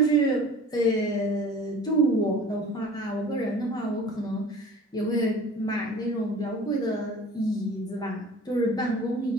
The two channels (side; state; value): both; normal; correlation 0.44